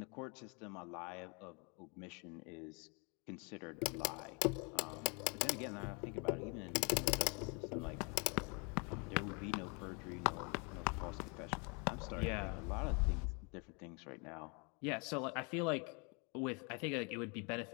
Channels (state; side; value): quieter; right; 33.1 dB